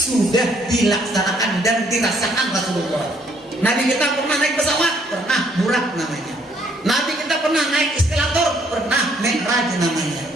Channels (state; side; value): normal; both; correlation 0.66